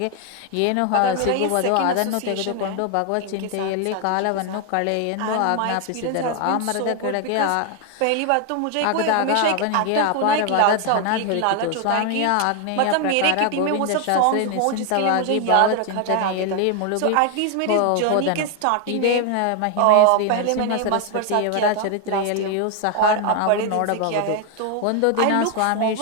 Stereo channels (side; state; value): both; different; correlation 0.01